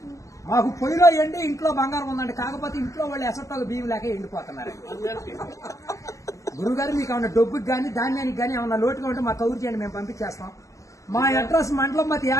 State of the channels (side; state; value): right; late; 0.16 ms